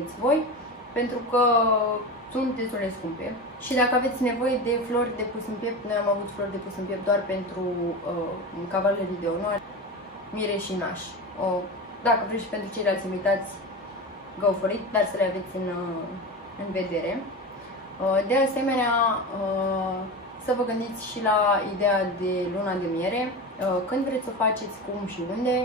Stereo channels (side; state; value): both; normal; correlation 0.25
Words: voi, pentru că sunt destul de scumpe. Și dacă aveți nevoie de flori de pus în piept, noi am avut flori de pus în piept doar pentru cavalerii de onoare, mire și naș. Dacă vreți și pentru ceilalți invitați, go for it, dar să le aveți în vedere. De asemenea, să vă gândiți și la ideea de luna de miere, când vreți să o faceți, cum și unde,